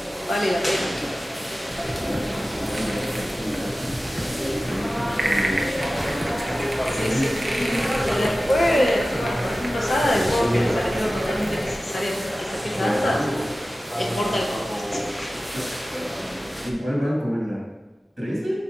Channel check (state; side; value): normal; both; correlation 0.96